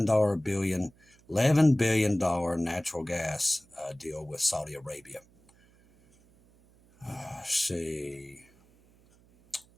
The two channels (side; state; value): right; noise; hum, 30 dB below the sound